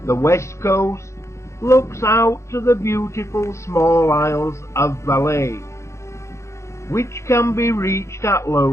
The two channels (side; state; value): right; late; 0.14 ms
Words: The west coast looks out to the beautiful small isles of Valais, which can be reached at